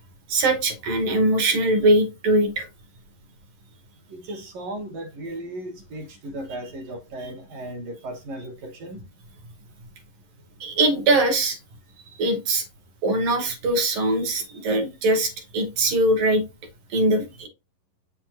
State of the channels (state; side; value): late; left; 11 ms